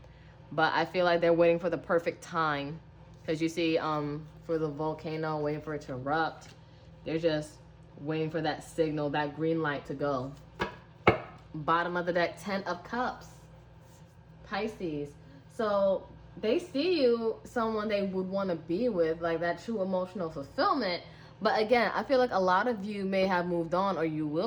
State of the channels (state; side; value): identical; both; correlation 1.00